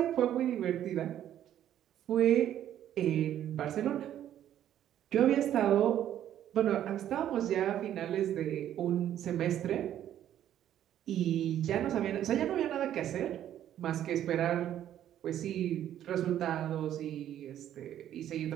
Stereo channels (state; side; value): quieter; left; 11.2 dB